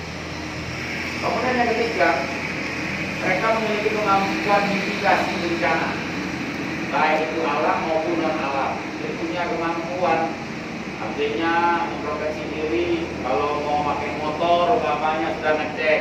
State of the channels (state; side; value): identical; both; correlation 1.00